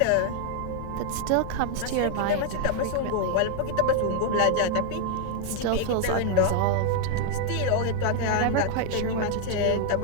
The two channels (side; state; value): both; different; correlation 0.00